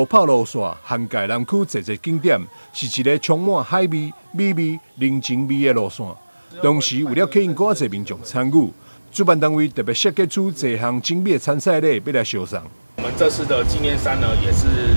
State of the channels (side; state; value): both; inverted; correlation -1.00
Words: 跑路线涵盖南区侪个景点，是一个充满海味、美味、人情味的路线。同时，为了吸引更侪民众参与，主办单位特别设计出多项精美的参赛礼，要来销送。我们这次的纪念衫呢，也是